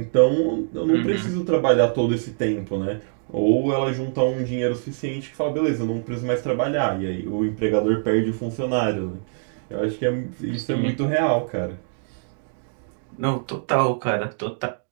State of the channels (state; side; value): silent; left; digital silence